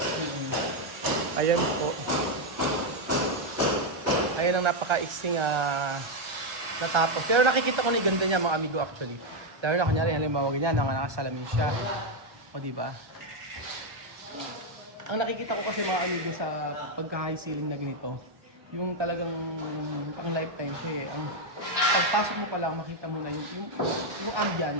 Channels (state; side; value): late; left; 1.3 ms